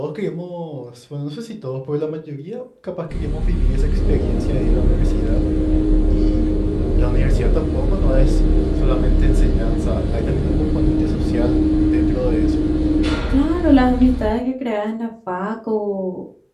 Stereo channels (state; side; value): identical; both; correlation 1.00